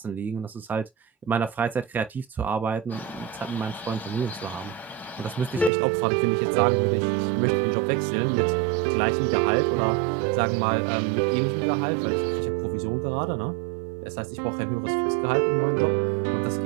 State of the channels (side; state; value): left; drops out; at 5.7 s